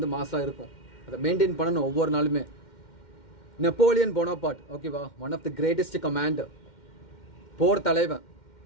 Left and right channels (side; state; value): right; late; 2.1 ms